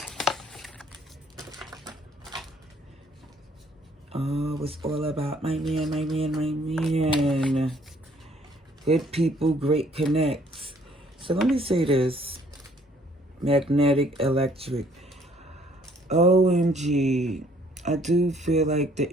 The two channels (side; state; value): both; normal; correlation 0.62